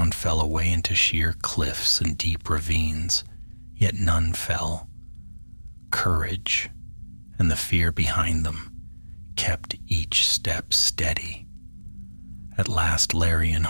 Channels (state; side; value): inverted; both; correlation -1.00